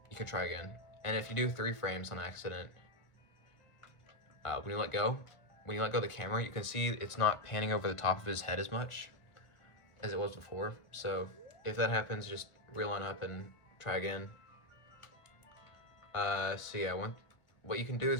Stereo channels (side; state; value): right; late; 1.4 ms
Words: you can try again. And if you do 3 frames on accident, when you let go of the camera, you can see it's not panning over the top of his head as much as it was before. So if that happens, just reline up and try again. So yeah, what you can do